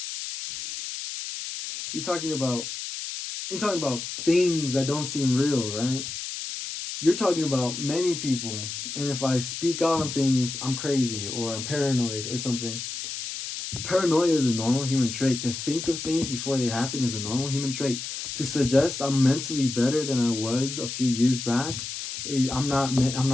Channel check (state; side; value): noise; left; hiss, 6 dB below the sound